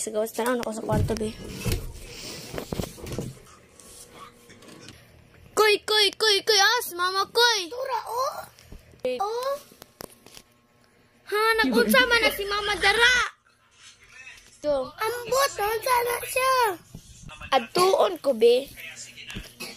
gawas. Tanaw na ko sa kwarto, be. Koy! Si mama, koy! Tura, oh! Oh! Ha? Nag-unsama na si mama dara! So, Ambot! Sana siya! adtuon ko, be.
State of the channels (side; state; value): both; identical; correlation 1.00